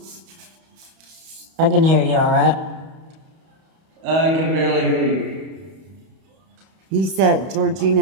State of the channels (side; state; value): left; late; 31 ms